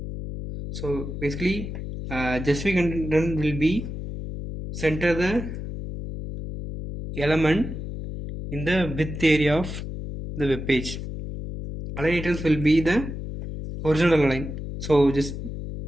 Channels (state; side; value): noise; left; hum, 7 dB below the sound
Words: So basically justify content will be center the element in the width area of the web page. Align items will be the horizontal align. So just